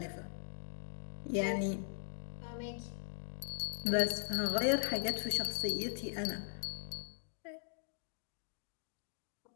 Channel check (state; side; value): silent; right; digital silence